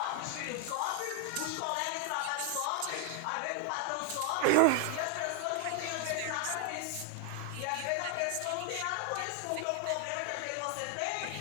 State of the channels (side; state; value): both; different; correlation 0.01